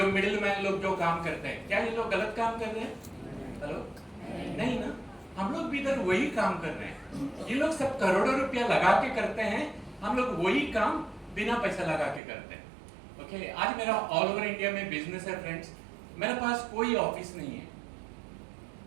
मिडिलमैन लोग जो काम करते हैं, क्या ये लोग गलत काम कर रहे हैं? हेलो, नहीं ना, हम लोग भी इधर वही काम कर रहे हैं। ये लोग सब करोड़ों रुपया लगा के करते हैं, हम लोग वही काम बिना पैसा लगा के करते हैं। ओके, आज मेरा ऑल ओवर इंडिया में बिजनेस है फ्रेंड्स। मेरे पास कोई ऑफिस नहीं है,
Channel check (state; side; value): drops out; left; at 12.2 s